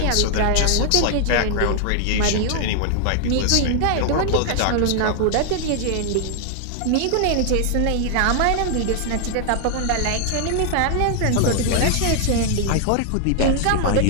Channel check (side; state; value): both; different; correlation 0.00